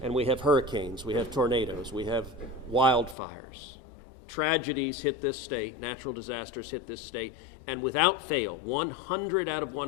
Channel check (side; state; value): right; drops out; at 3.2 s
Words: and we have hurricanes, we have tornadoes, we have wildfires. Tragedies hit this state, natural disasters hit this state, and without fail, 100 out of